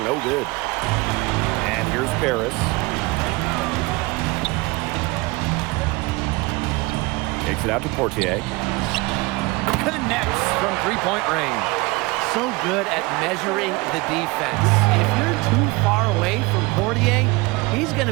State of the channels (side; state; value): left; quieter; 24.1 dB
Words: no good. And here's Paris. Takes it out to Portier. Connects from three-point range. So good at measuring the defense. If you're too far away from Portier, he's going